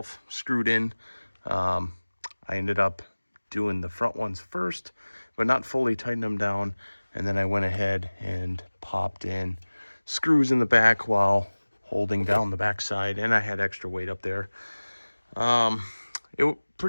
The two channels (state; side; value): inverted; both; correlation -1.00